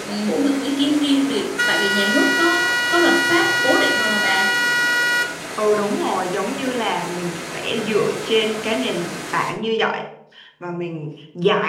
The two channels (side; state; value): both; identical; correlation 1.00